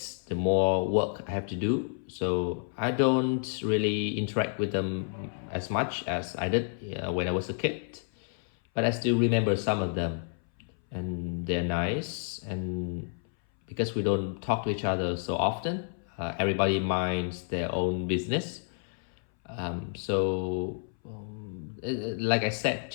the more work I have to do. So I don't really interact with them as much as I did when I was a kid. But I still remember some of them, and they're nice. And because we don't talk to each other so often, everybody minds their own business. Like I said,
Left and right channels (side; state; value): right; silent; 57 dB below the other